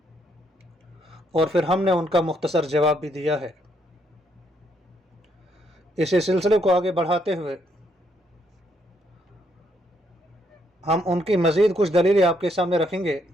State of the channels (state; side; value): normal; both; correlation 0.73